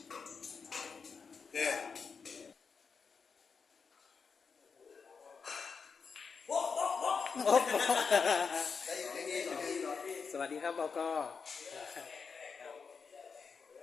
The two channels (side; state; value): right; quieter; 5.5 dB